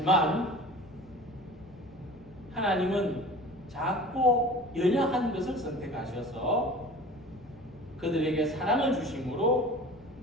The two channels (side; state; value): left; noise; rumble, 28 dB below the sound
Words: 하나님은 작고 연약한 것을 선택하셔서 그들에게 사랑을 주심으로